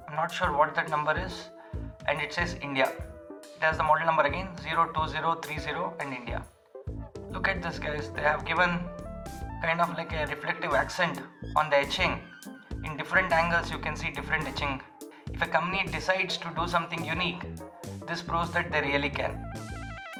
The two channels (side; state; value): both; identical; correlation 1.00